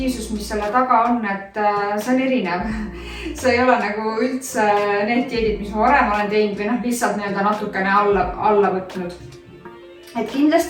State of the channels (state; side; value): identical; both; correlation 1.00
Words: mis selle taga on, et see on erinev. See ei ole nagu üldse need dieedid, mis ma varem olen teinud või lihtsalt natukene alla võtnud. Et